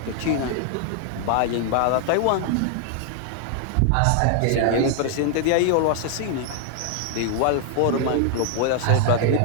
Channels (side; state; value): both; different; correlation 0.00